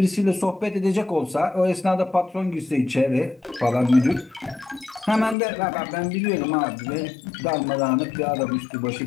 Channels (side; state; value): right; drops out; at 5.4 s